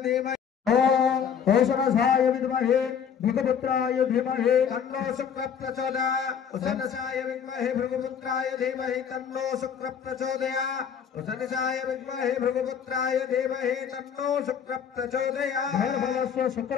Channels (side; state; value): right; quieter; 7.6 dB